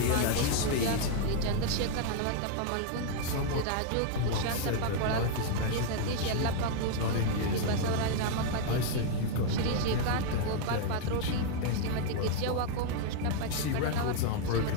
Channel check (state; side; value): different; both; correlation 0.00